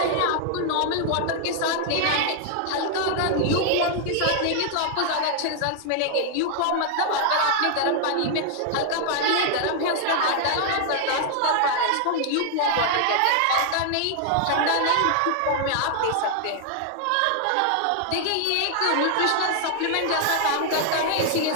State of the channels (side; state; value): both; different; correlation 0.00